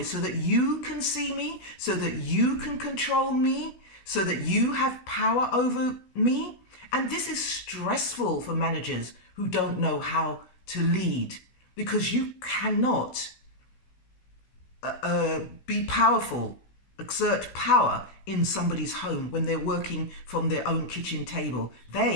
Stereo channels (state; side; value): late; right; 16 ms